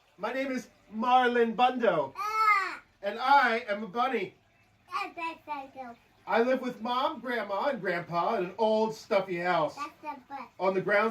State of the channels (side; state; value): both; identical; correlation 1.00